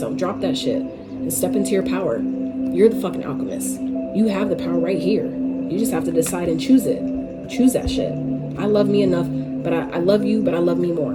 Drop that shit and step into your power. You're the fucking alchemist. You have the power right here. You just have to decide and choose it. Choose that shit. I love me enough, but I love you, but I love me more.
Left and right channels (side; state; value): both; identical; correlation 1.00